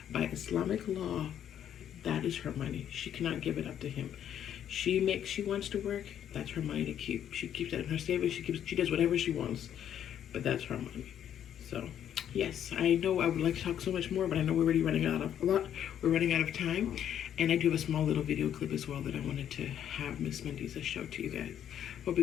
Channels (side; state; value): right; quieter; 9.9 dB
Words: By Islamic law, that is her money. She cannot give it up to him. She wants to work, that's her money to keep. She keeps that in her savings. She does whatever she wants, but that's her money. So yes, I know I would like to talk so much more, but I know we're already running out of time. And I do have a small little video clip as well that I wanted to have Miss Mendiza show to you guys. Hope